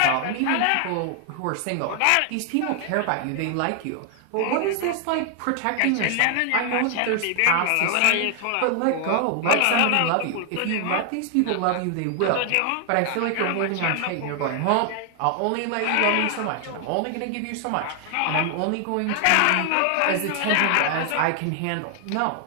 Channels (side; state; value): both; different; correlation 0.00